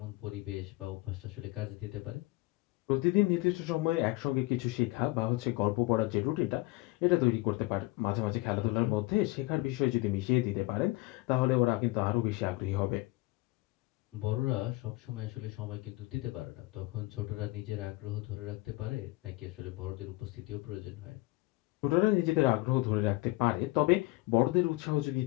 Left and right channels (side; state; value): right; quieter; 21.0 dB